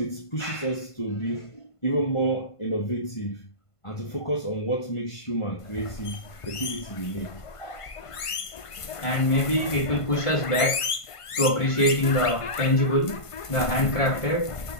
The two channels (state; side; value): late; right; 1.5 ms